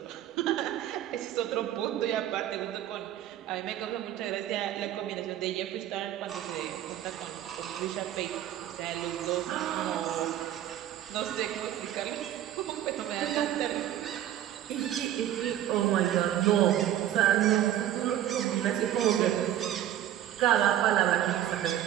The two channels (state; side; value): quieter; left; 11.8 dB